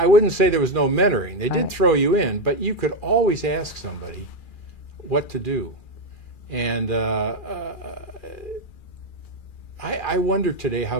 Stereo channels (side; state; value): right; late; 2.4 ms